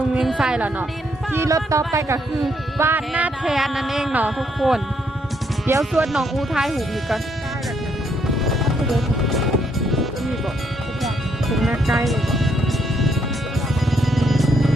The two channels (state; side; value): normal; both; correlation 0.73